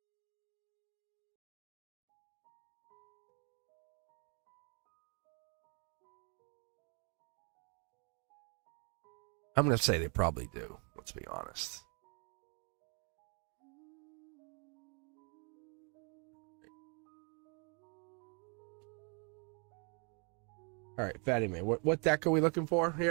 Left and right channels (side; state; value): left; quieter; 36.1 dB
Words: I'm going to say they probably do. Let's be honest. All right, Fatty Man, what deck are we looking for